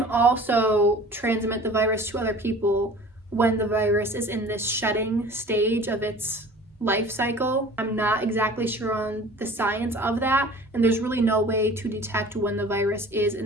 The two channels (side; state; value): both; normal; correlation 0.44